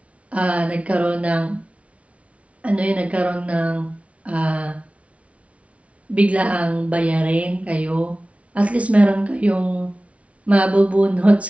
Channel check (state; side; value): late; left; 0.064 ms